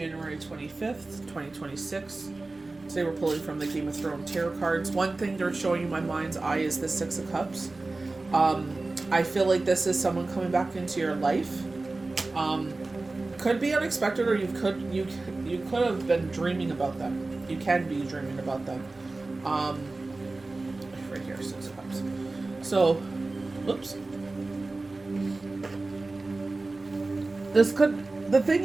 25th, 2026. Today we're pulling from the Game of Thrones tarot cards. One thing they're showing in my mind's eye is the Six of Cups. I feel like this is someone coming back into your life. Could be unexpected, or you could have been dreaming about them. You can be dreaming about them. Right here, Six of Cups. So, oops. The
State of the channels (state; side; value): quieter; left; 3.3 dB